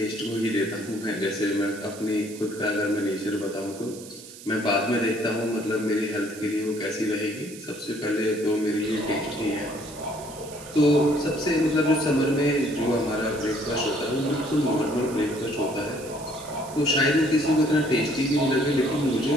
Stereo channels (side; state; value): right; noise; hiss, 17 dB below the sound